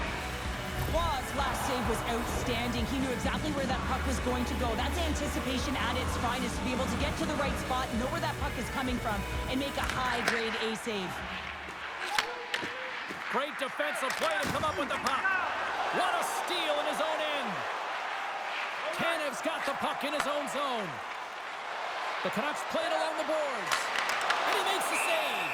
Wall's last save was outstanding. He knew exactly where that puck was going to go. That's anticipation at its finest, to be able to get to the right spot, know where that puck is coming from, and make a high-grade A save. Great defensive play to come up with the puck. What a steal in his own end. Tanev's got the puck in his own zone. The Canucks play it along the boards. And he makes the save.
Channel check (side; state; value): both; identical; correlation 1.00